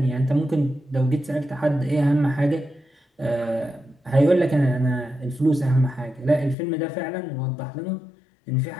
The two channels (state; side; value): drops out; right; at 6.6 s